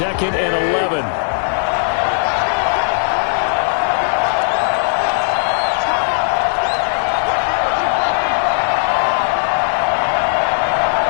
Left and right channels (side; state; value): right; silent; 68 dB below the other